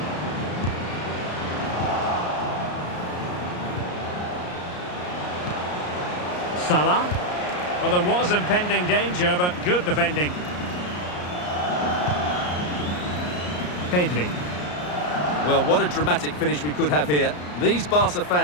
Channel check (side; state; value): right; late; 34 ms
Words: Salah. Well, there was impending danger, but good defending. Pedri. Well, what a dramatic finish we could have here. These Barca